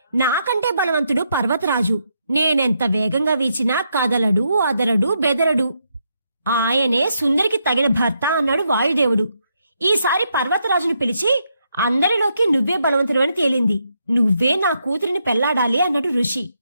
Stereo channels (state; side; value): inverted; both; correlation -0.79